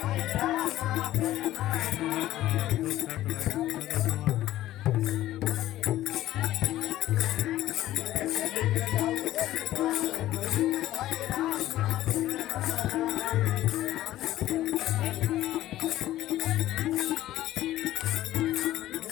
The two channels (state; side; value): quieter; right; 14.4 dB